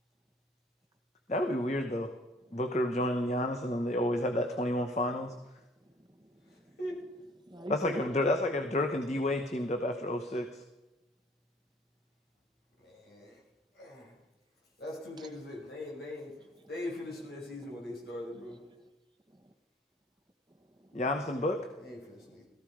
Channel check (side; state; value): both; normal; correlation 0.57